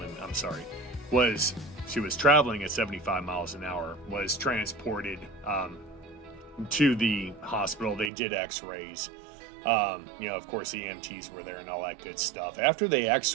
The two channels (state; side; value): drops out; left; at 8.1 s